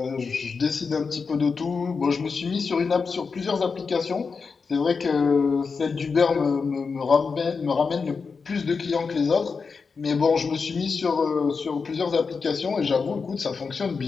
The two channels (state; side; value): quieter; right; 5.1 dB